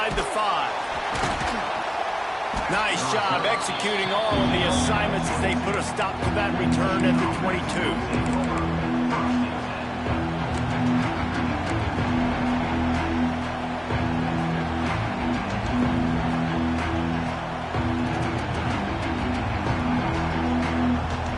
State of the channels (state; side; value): identical; both; correlation 1.00